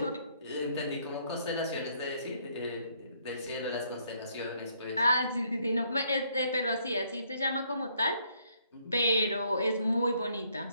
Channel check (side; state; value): both; inverted; correlation -0.68